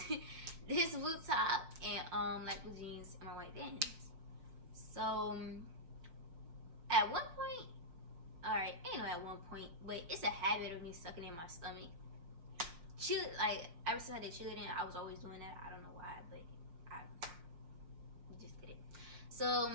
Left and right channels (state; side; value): late; left; 6.1 ms